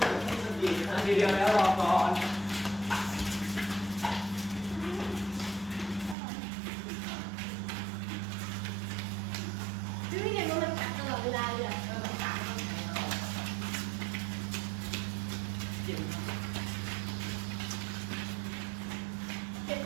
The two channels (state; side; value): drops out; left; at 6.2 s